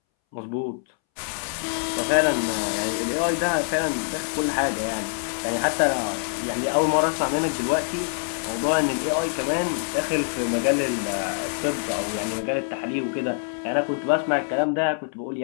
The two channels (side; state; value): right; silent; 62 dB below the other